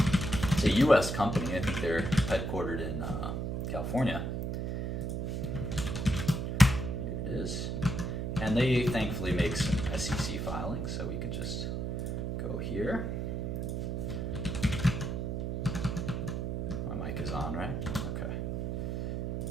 It's a US company. I think they're headquartered in California. It is. And they thankfully make some SEC filings, so we can just go here. My mic is on, right? Okay.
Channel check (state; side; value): noise; right; hum, 1 dB below the sound